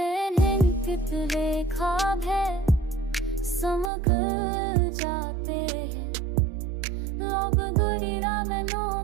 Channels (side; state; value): left; drops out; at 3.9 s